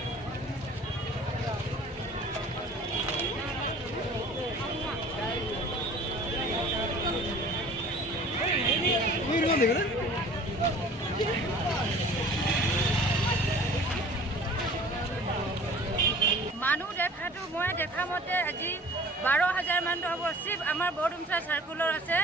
মানুহ দেখাটো মই দেখা মতে আজি 12,000 মান হ'ব চিপ আমাৰ বৰডুমচা সাৰ্কুলৰ আছে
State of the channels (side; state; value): both; normal; correlation 0.46